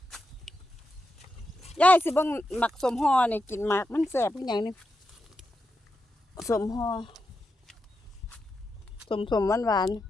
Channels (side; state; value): both; normal; correlation 0.87